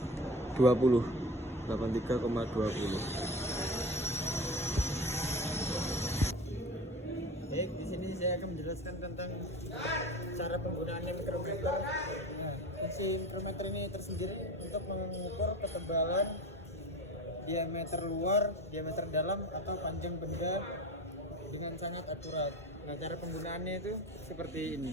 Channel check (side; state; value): both; normal; correlation 0.33